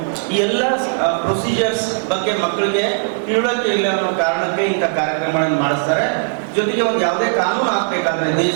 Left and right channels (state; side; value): silent; left; 67 dB below the other